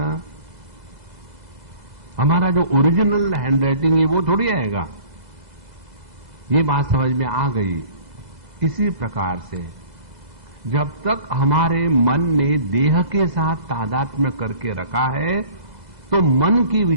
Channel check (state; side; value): late; left; 2.0 ms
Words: हमारा जो ओरिजिनल हैंडराइटिंग है वो थोड़ी आएगा। ये बात समझ में आ गई। इसी प्रकार से जब तक हमारे मन ने देह के साथ तादात्म्य करके रखा है तो मन के